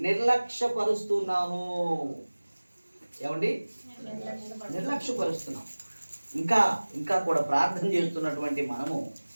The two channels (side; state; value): both; inverted; correlation -1.00